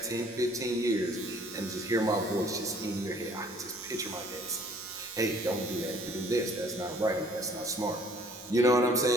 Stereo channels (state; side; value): normal; both; correlation 0.57